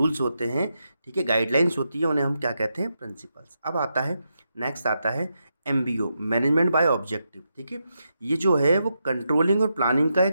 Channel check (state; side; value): inverted; both; correlation -0.84